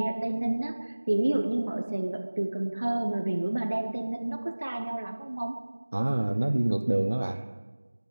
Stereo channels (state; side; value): inverted; both; correlation -1.00